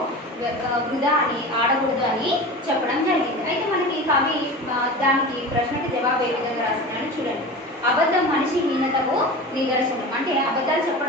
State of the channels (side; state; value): both; normal; correlation 0.32